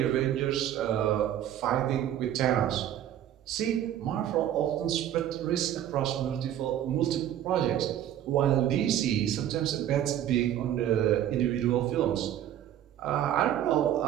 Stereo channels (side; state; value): left; quieter; 11.3 dB